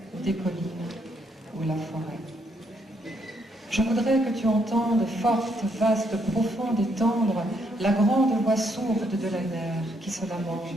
ou des collines, ou la forêt. Je voudrais que tu entendes forte, vaste, profonde et tendre la grande voix sourde de la mer qui se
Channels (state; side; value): normal; both; correlation 0.74